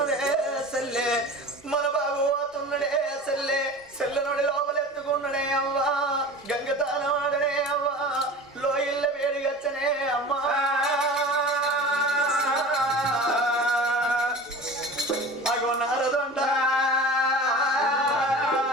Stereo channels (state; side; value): normal; both; correlation 0.37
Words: సెల్లే మన బాబు పోతున్నడే సెల్లే సెల్లనుడి లోపలెత్తుకున్నడే అవ్వా గంగతానవాడనే అవ్వా